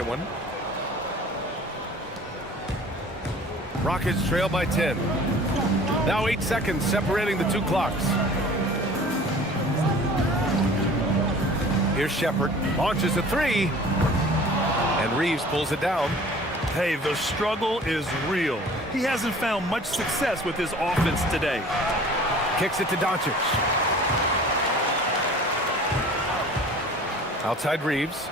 one. Rockets trail by 10. Now 8 seconds separating the 2 clocks. Here's Shepard. Launches a 3. And Reeves pulls it down. Hey, the struggle is real. He hasn't found much success with his offense today. Kicks it to Doncic. Outside Reeves.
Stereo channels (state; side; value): normal; both; correlation 0.46